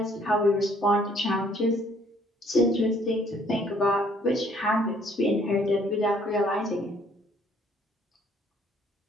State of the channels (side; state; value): both; normal; correlation 0.62